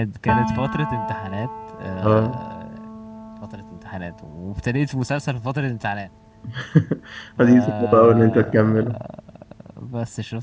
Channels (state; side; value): identical; both; correlation 1.00